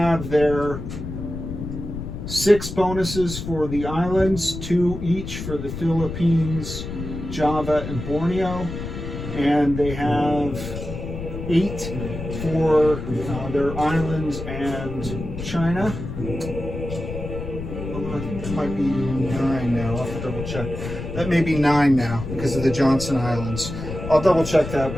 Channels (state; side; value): noise; left; rumble, 7 dB below the sound